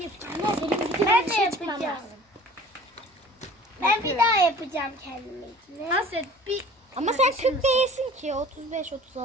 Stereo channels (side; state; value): both; normal; correlation 0.46